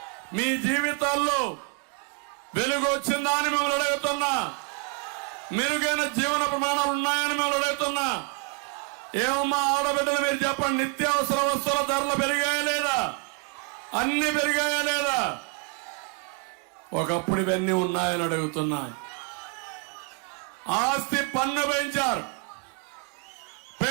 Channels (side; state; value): left; quieter; 31.2 dB